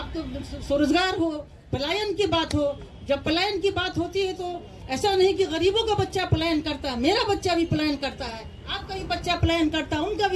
स्वरोजगार हो, पलायन की बात हो। जब पलायन की बात होती है तो ऐसा नहीं कि गरीबों का बच्चा पलायन करता है, मेरा बच्चा भी पलायन करता है, आपका भी बच्चा पलायन करता है, उनका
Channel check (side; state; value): both; identical; correlation 1.00